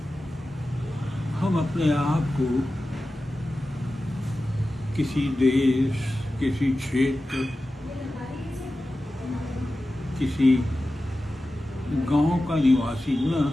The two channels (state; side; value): normal; both; correlation 0.94